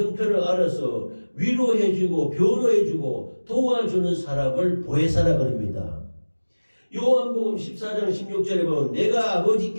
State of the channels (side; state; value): both; inverted; correlation -1.00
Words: 알아서 위로해주고 변호해주고 도와주는 사람을 보혜사라 그럽니다. 요한복음 14장 16절에 보면 내가